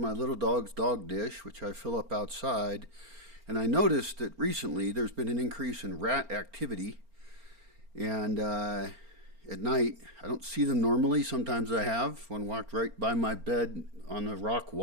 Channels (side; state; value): left; late; 4.4 ms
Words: little dog's dog dish, which I fill up outside. And I noticed that recently there's been an increase in rat activity. And at night, I don't see them normally. Sometimes I have. One walked right by my bed on the rock